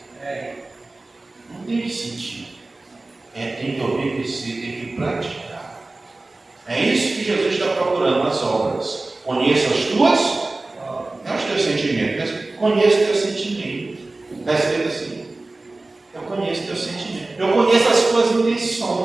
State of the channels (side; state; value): left; quieter; 3.1 dB